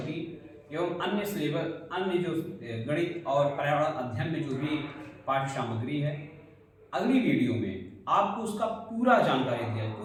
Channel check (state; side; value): identical; both; correlation 1.00